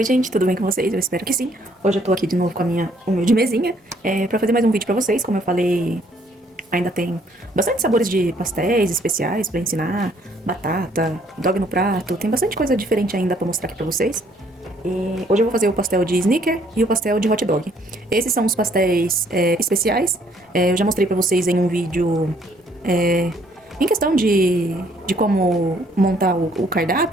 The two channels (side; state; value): both; normal; correlation 0.65